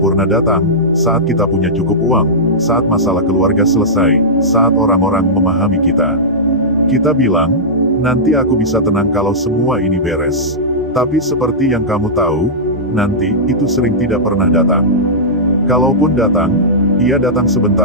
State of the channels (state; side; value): normal; both; correlation -0.13